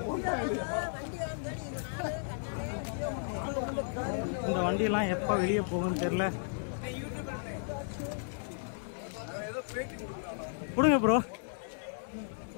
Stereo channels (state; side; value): silent; right; 55 dB below the other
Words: இந்த வண்டியெல்லாம் எப்போ வெளியே போகும்னு தெரியல. கொடுங்க ப்ரோ,